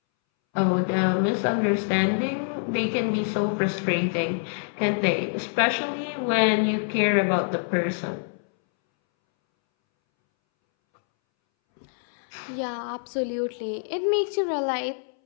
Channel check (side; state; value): right; silent; 61 dB below the other